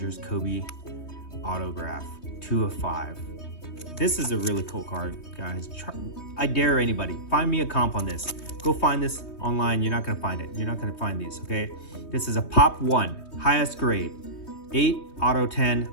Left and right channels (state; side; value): late; right; 3.2 ms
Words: Kobe autograph, 2 of 5. This is a really cool card, guys. I dare anybody, find me a comp on this. Go find this online. You're not gonna find it. You're not gonna find these, okay? This is a Pop 1, highest grade, 8 auto 10